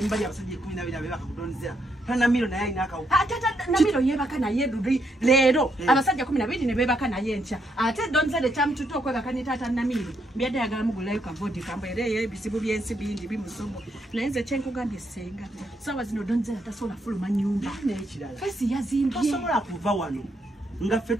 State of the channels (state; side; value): normal; both; correlation 0.76